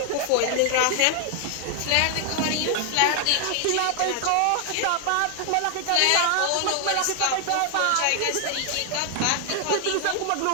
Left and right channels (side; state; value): both; different; correlation 0.00